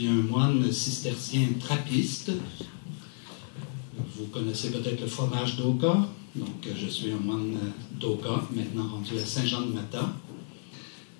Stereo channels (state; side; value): silent; right; digital silence